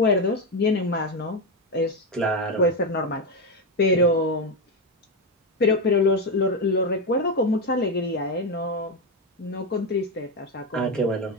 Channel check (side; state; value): both; normal; correlation 0.10